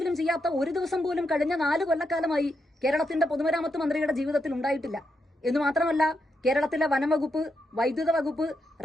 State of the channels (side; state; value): both; normal; correlation 0.83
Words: ചെയ്യാത്ത ഒരു ദിവസം പോലും കഴിഞ്ഞ 4 കൊല്ലക്കാലമായി കേരളത്തിന്റെ പൊതുമരാമത്ത് മന്ത്രിയുടെ ജീവിതത്തിൽ ഉണ്ടായിട്ടില്ല. എന്ന് മാത്രമല്ല, കേരളത്തിലെ വനം വകുപ്പ്, വൈദ്യുത വകുപ്പ്,